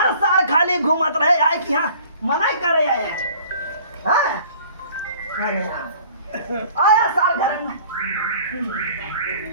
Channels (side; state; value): both; inverted; correlation -0.50